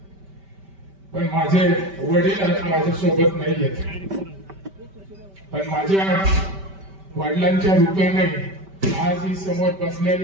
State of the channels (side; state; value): left; late; 5.1 ms